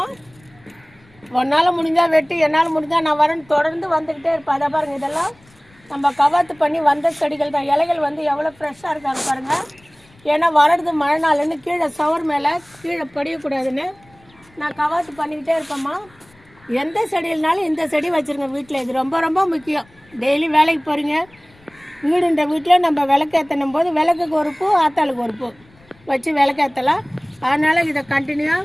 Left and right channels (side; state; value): left; noise; rumble, 29 dB below the sound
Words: ஒன்றால் முடிஞ்சால் வெட்டி, என்னால் முடிஞ்சால் நான் வரேன்னு தொடர்ந்து வந்துக்கிட்டே இருப்பேன். அதை பாருங்கள், இதெல்லாம் நம்ம கவாத்து பண்ணி வந்த செடிகள் தான். இலைகள் வந்து எவ்வளோ ஃப்ரெஷ்ஷாக இருக்காங்க பாருங்கள். ஏன்னா வளருது மழை நாள்னு கீழே சவர் மேலே கீழே படியக்கூடாதுன்னு நான் கவாத்து பண்ணிக்கிட்டே இருப்பேம்மா. எந்த செடியில்னாலும் இந்த செடி வச்சுருங்க வீட்டில். இது ரொம்ப ரொம்ப முக்கியம். டெய்லி வேலைக்கு போகிறீங்க, வீடுன்ற வீட்டில் நம்ம விளக்கேற்றணும் போது விளக்குக்கு ஒரு பூ, ஆத்தாளுக்கு ஒரு பூ வச்சு விளக்கேற்றலாம். அதனால் இதை